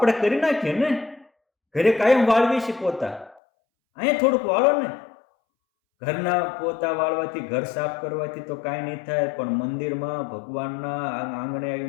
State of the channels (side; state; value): right; drops out; at 3.4 s